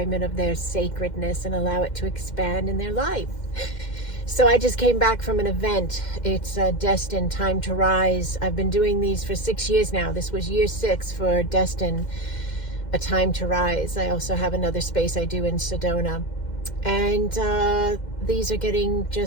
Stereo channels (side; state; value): right; late; 2.1 ms